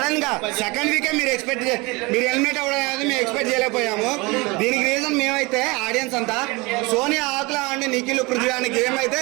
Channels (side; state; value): left; quieter; 25.2 dB